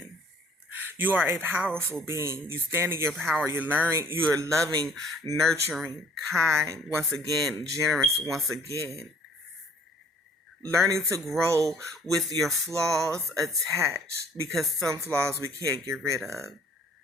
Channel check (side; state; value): both; normal; correlation 0.56